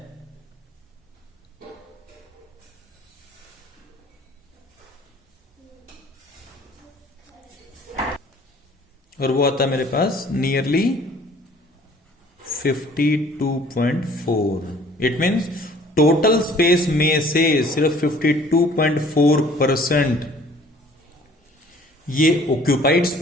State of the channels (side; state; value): both; normal; correlation 0.53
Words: और वो आता है मेरे पास nearly 52.4। It means total space में से सिर्फ 52.4% ये ऑक्यूपाइड